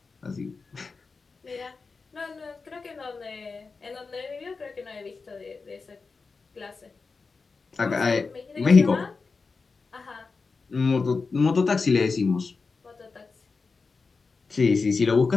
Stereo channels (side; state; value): right; quieter; 4.4 dB